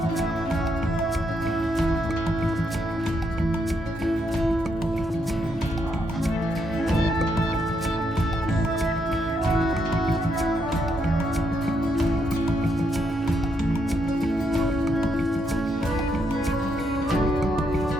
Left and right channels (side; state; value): both; normal; correlation 0.78